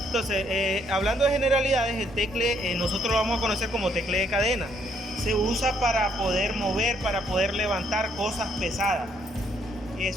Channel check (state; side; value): normal; both; correlation 0.70